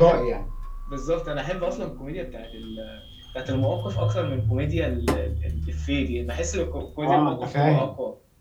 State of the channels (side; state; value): both; identical; correlation 1.00